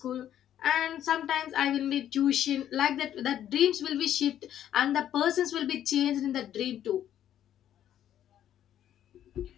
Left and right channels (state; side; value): quieter; right; 10.9 dB